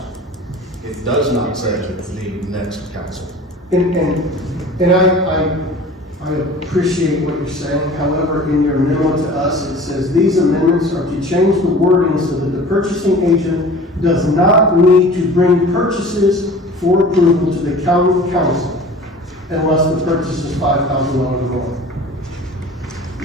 It does not say the next council. And I appreciate what you're saying. However, in your memo to us, it says these amendments are to change the wording so that the purchasing agent does not need to bring purchases for approval to the county council unless the purchase is $5,000 or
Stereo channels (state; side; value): normal; both; correlation 0.42